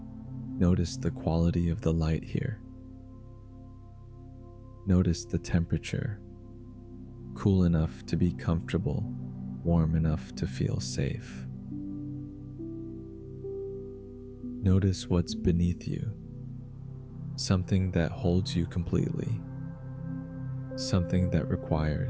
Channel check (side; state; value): both; identical; correlation 1.00